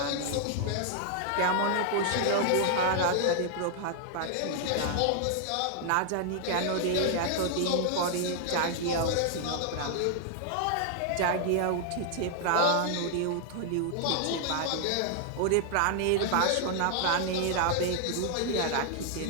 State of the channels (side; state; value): both; different; correlation 0.00